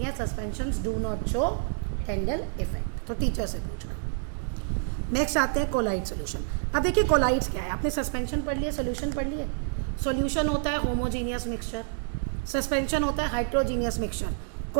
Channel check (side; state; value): left; silent; digital silence